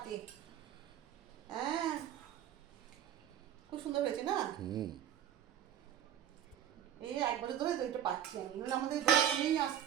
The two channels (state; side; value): quieter; left; 10.4 dB